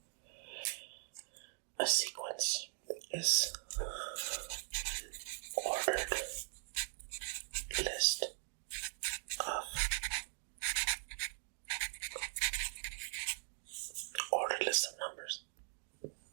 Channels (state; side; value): silent; left; digital silence